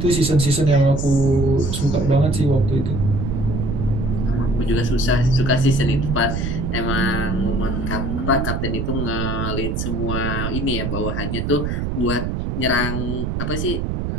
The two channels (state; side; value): noise; right; rumble, 2 dB below the sound